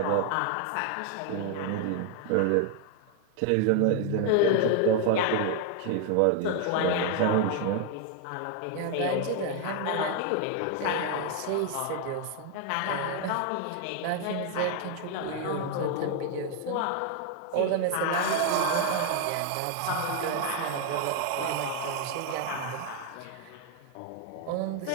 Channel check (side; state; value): both; different; correlation 0.01